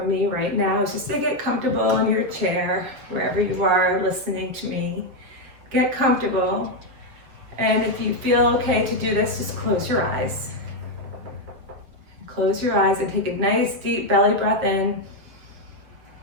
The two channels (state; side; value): late; left; 7.3 ms